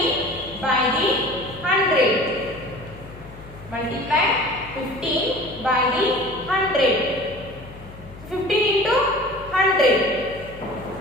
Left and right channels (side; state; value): left; noise; hum, 18 dB below the sound